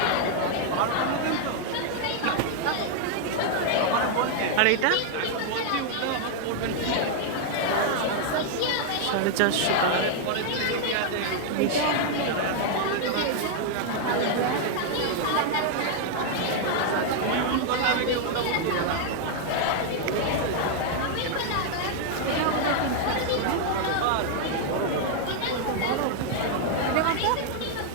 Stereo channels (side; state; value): both; different; correlation 0.00